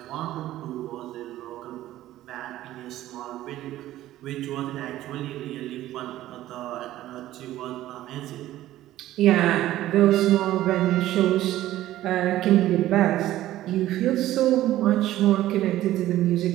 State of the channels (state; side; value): quieter; left; 14.4 dB